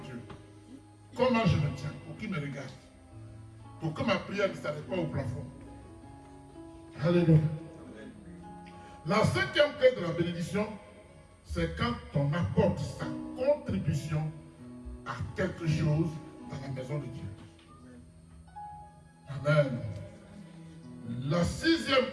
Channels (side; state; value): both; identical; correlation 1.00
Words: Comment je me tiens pour qu'il me regarde. Pour que ma prière ne s'arrête pas au plafond. Alléluia. La cinquième clé de la bénédiction, c'est quand on apporte sa contribution à quelque chose dans la maison de Dieu. Amen. La sixième